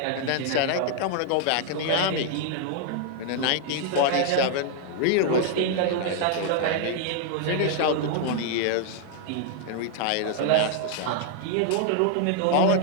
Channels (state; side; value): different; both; correlation -0.01